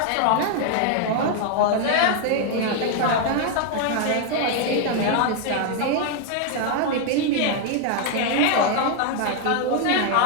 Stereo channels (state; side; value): different; both; correlation 0.00